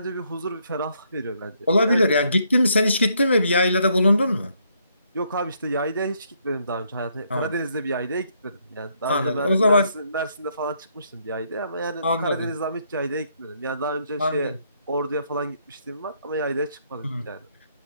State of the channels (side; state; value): both; inverted; correlation -0.72